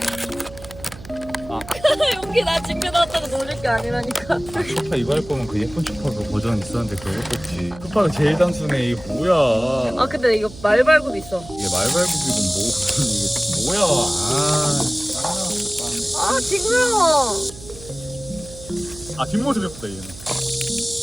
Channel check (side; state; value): right; noise; hum, 17 dB below the sound